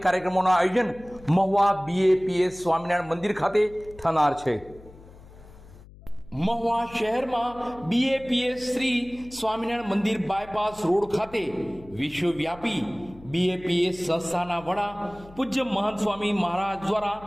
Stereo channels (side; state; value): left; noise; hum, 21 dB below the sound